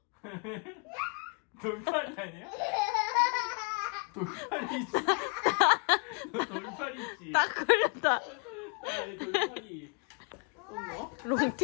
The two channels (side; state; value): right; quieter; 35.4 dB